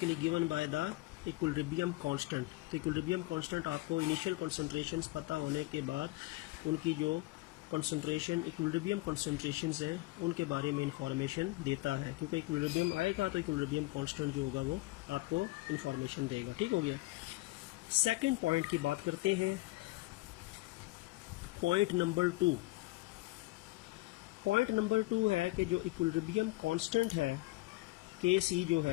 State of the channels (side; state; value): right; quieter; 21.1 dB